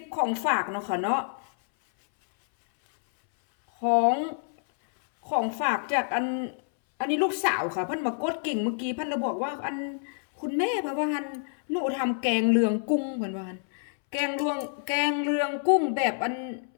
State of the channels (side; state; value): right; silent; 60 dB below the other